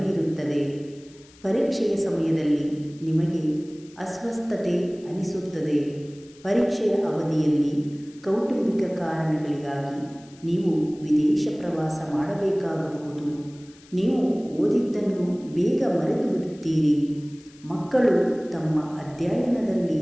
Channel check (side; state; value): left; noise; hiss, 26 dB below the sound